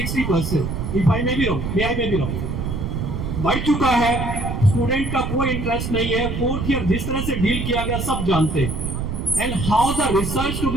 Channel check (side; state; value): right; noise; rumble, 3 dB below the sound